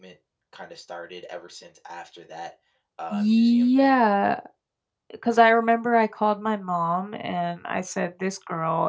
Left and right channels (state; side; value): identical; both; correlation 1.00